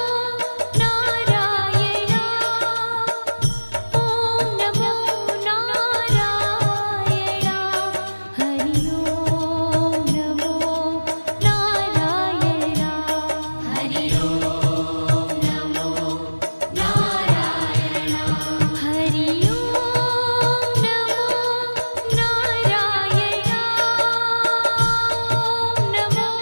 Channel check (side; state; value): both; inverted; correlation -1.00